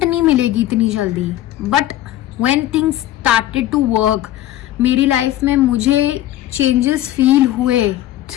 नहीं मिलेगी इतनी जल्दी. But when things started to work, मेरी लाइफ में मुझे चेंजेस फील हुए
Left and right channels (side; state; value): right; quieter; 13.8 dB